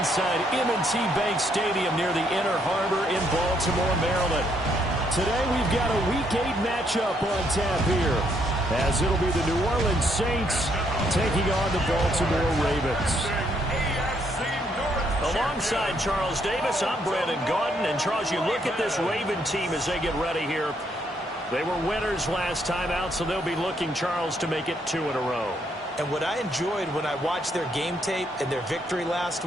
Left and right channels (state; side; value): normal; both; correlation 0.72